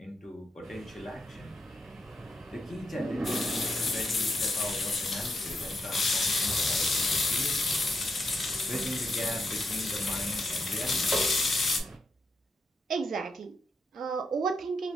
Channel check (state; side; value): normal; both; correlation 0.82